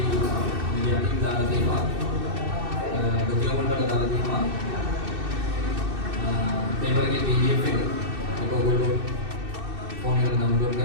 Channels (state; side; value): late; left; 2.6 ms